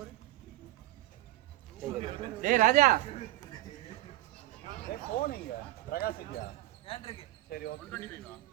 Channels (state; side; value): quieter; left; 16.6 dB